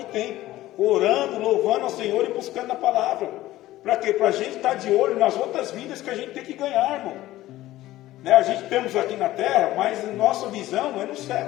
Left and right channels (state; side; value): quieter; right; 15.8 dB